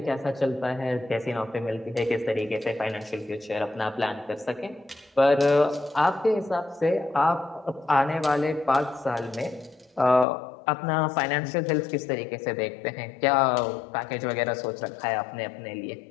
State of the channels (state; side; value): drops out; right; at 10.2 s